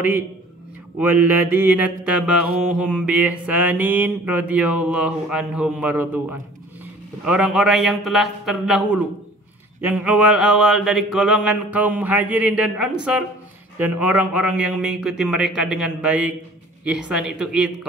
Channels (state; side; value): normal; both; correlation 0.49